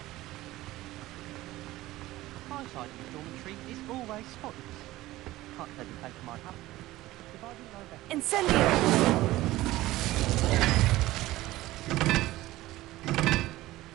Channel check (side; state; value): left; quieter; 17.1 dB